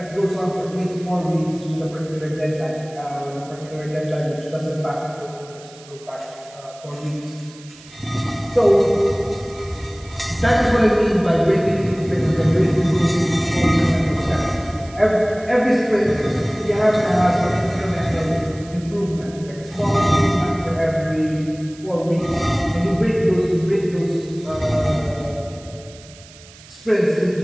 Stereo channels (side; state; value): right; noise; hiss, 22 dB below the sound